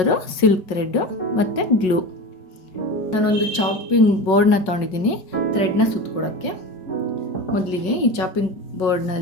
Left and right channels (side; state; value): right; late; 5.4 ms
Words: ಸಿಲ್ಕ್ ಥ್ರೆಡ್ಡು ಮತ್ತು ಗ್ಲೂ. ನಾನೊಂದು ಚಾಪಿಂಗ್ ಬೋರ್ಡ್ನ ತೊಗೊಂಡಿದ್ದೀನಿ ಥ್ರೆಡ್ನ ಸುತ್ಕೊಳಕ್ಕೆ. ಮೊದಲಿಗೆ ಈ ಚಾಪಿಂಗ್